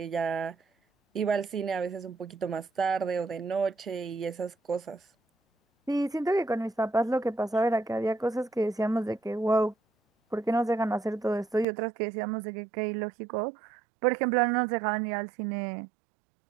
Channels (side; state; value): left; drops out; at 11.7 s